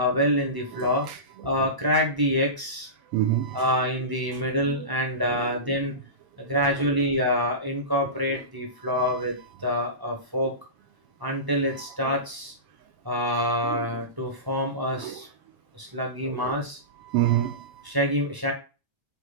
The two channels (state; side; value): late; left; 1.0 ms